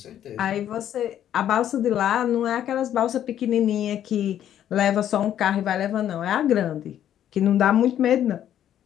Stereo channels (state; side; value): quieter; right; 10.8 dB